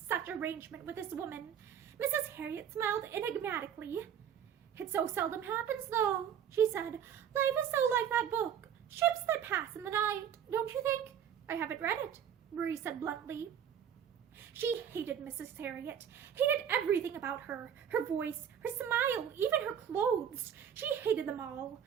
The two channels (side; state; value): left; quieter; 8.9 dB